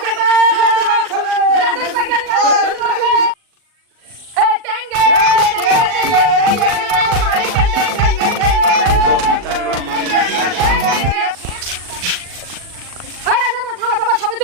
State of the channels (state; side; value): late; left; 40 ms